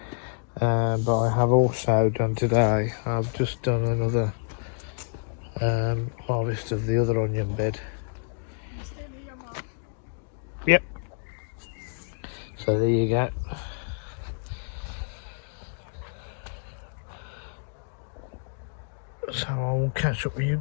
But I have also done today, I've just done another harvest of the other onion bed. Yep. So there you go. So I will catch up with you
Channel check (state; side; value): silent; right; digital silence